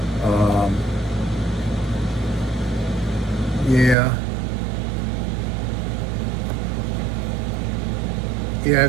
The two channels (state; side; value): drops out; left; at 4.0 s